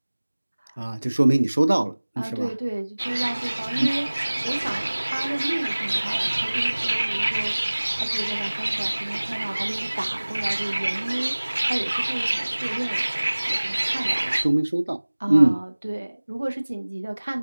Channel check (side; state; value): both; inverted; correlation -1.00